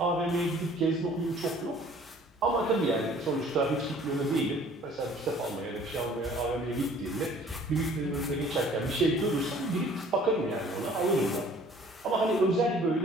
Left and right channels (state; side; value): normal; both; correlation 0.53